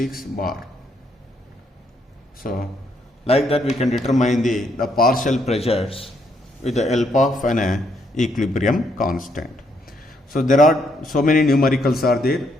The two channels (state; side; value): normal; both; correlation 0.73